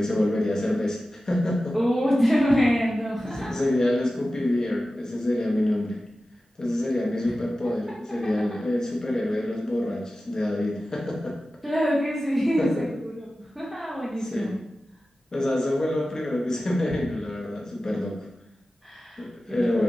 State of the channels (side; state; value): both; normal; correlation 0.94